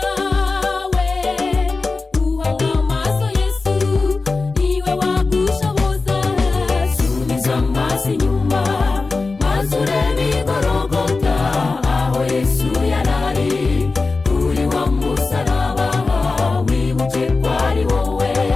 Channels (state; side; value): quieter; right; 3.9 dB